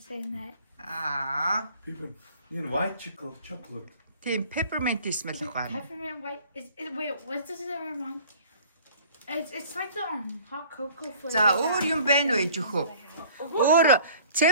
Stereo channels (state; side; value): inverted; both; correlation -0.50